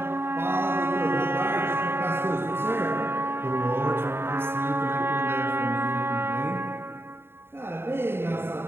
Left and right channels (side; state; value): left; late; 0.11 ms